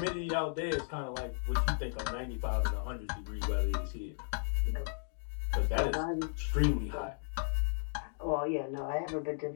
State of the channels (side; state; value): right; silent; digital silence